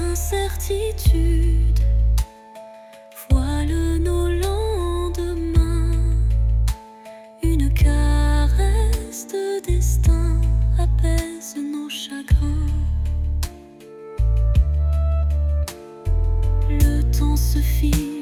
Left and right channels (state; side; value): identical; both; correlation 1.00